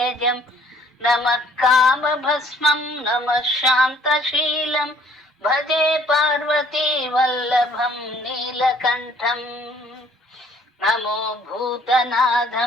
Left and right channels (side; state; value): both; normal; correlation 0.59